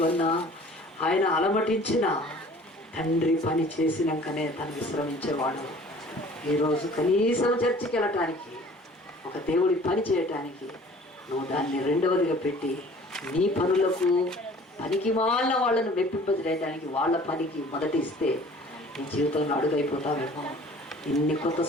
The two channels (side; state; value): both; normal; correlation 0.50